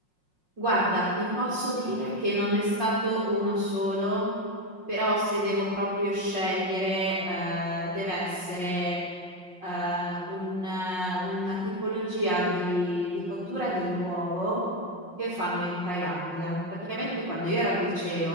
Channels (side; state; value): left; late; 5.5 ms